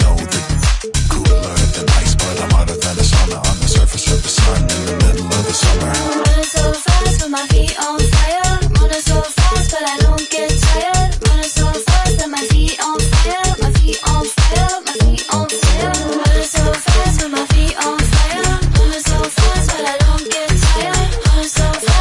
know that cooler than ice, but I'm hotter than a sauna on the surface of the sun in the middle of the summer. Running so fast with my feet on fire. Running so fast, but I don't get tired. Running so fast that my feet on fire. My feet on fire. My feet on fire. Running so fast with my feet on fire. Running so fast, but I don't get tired. Running so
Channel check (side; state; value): both; identical; correlation 1.00